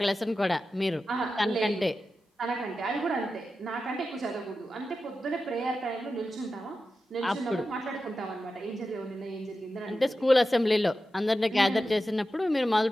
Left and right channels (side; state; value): both; normal; correlation 0.92